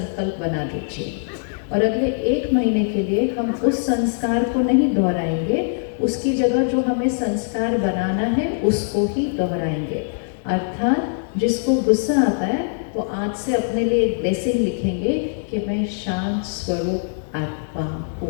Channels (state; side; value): silent; right; 64 dB below the other